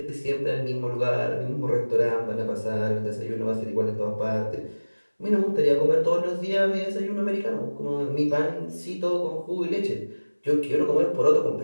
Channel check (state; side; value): inverted; both; correlation -1.00